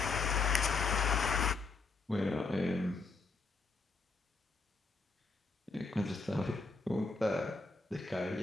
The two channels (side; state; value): right; quieter; 4.0 dB